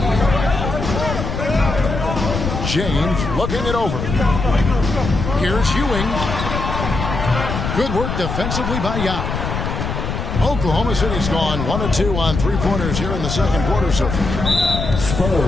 James looking it over. Here's Ewing. Good work defensively by Yao. Oklahoma City's gone 1 of 2 on 3-pointers here in the second quarter so far.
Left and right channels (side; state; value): left; noise; rumble, 4 dB below the sound